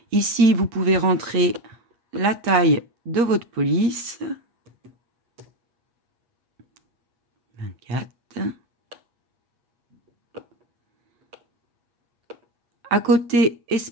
Ici vous pouvez rentrer la taille de votre police. 24. À côté,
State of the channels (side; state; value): left; late; 8.3 ms